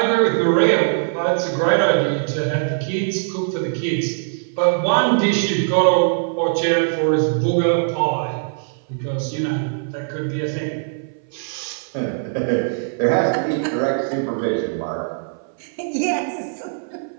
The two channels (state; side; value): silent; left; 57 dB below the other